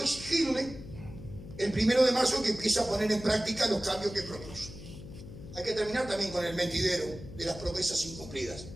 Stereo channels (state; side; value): noise; left; hum, 14 dB below the sound